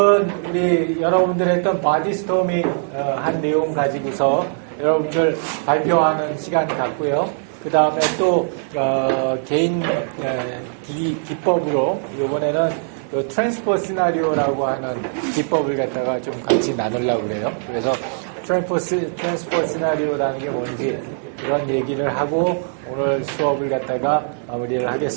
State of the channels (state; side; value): silent; left; 57 dB below the other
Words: 우리 여러분들 했던 바디스토밍 한 내용 가지고서 여러분들 발표하는 시간 갖고요. 그 다음에 또 개인 기법으로 이번에는 트랜스퍼 시나리오라고 하는 기법을 갖다가 좀 같이 나누려고 그래요. 그래서 트랜스퍼 시나리오라는 게 뭔지 그런 얘기를 하고 오늘 수업을 갖다가 마무리를